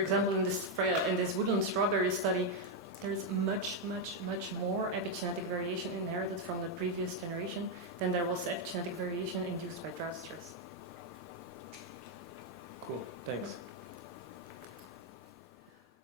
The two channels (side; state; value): both; normal; correlation 0.02